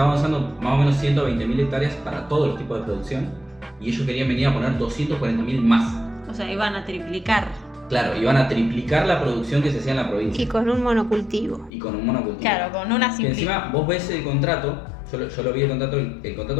usando más o menos 120.000 hectáreas para todos los tipos de producción, y ellos querían venir a poner 240.000 más. O sea, iban a triplicar. Claro, iban a triplicar la producción que se hacía en la provincia. Y con un monocultivo. Claro, con una simple. Encima vos ves el contrato, yo lo vi el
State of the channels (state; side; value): drops out; right; at 11.7 s